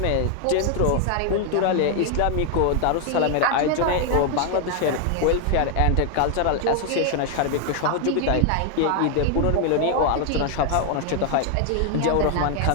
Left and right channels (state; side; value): different; both; correlation 0.01